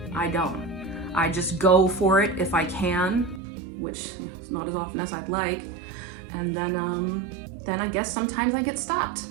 I don't. I just go for it if I can, which is not as often as I'd like. And then I guess sometimes I get stopped.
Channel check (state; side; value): drops out; left; at 3.4 s